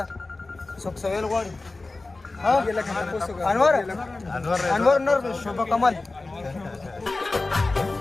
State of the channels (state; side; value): quieter; right; 3.3 dB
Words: څوک څه ویل غواړي؟ انور نور شوبه کمال